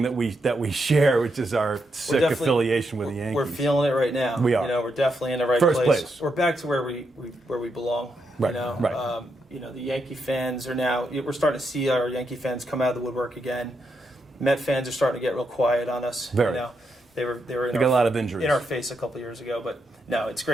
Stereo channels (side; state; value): both; normal; correlation 0.82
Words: that we share, which is our sick affiliation with the Yankees. We're feeling it right now. We are. We're definitely in the right First place. We're back to where we belong. Right. Right. The Yankee fans are now. We're starting to see our Yankee fans come out of the woodwork again. Met fans are starting to get real quiet on us. Very. They were got a lot of injuries in our face a couple of years ago, but no, it's